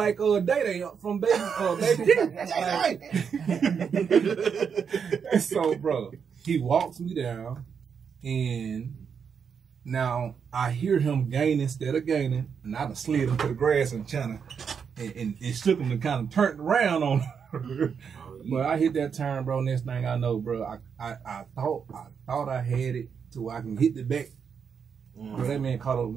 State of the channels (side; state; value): left; quieter; 6.7 dB